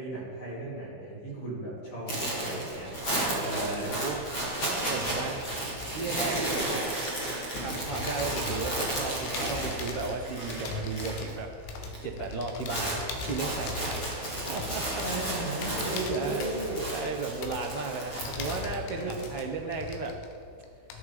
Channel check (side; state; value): right; late; 16 ms